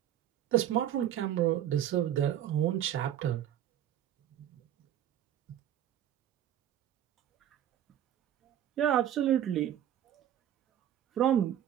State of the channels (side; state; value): left; quieter; 10.9 dB